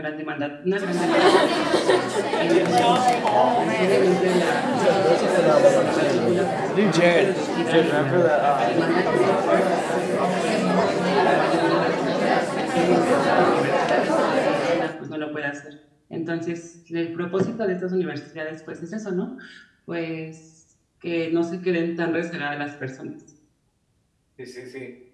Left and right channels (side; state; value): both; identical; correlation 1.00